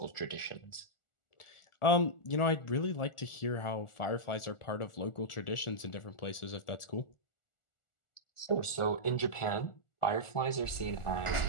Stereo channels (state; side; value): late; right; 1.4 ms